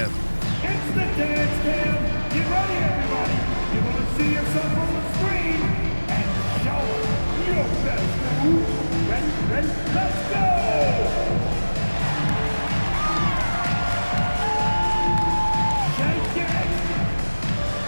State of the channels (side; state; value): both; inverted; correlation -1.00